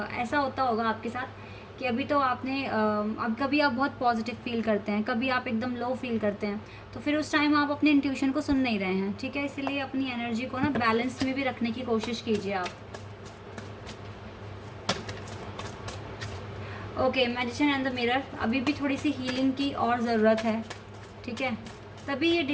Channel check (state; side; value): identical; both; correlation 1.00